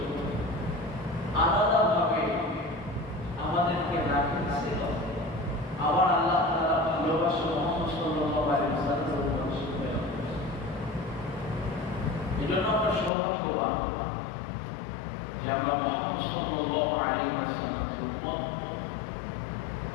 আলাদাভাবে আমাদেরকে রাখিয়েছিল। আবার আল্লাহ তাআলা ভালোবাসা মুহাম্মদ সাল্লাল্লাহু আলাইহি ওয়াসাল্লামের উপর প্রেরণ করেছেন। এজন্য আমরা সৌভাগ্যবান যে আমরা মুহাম্মদ সাল্লাল্লাহু আলাইহি ওয়াসাল্লামের উম্মত।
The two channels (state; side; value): drops out; right; at 13.1 s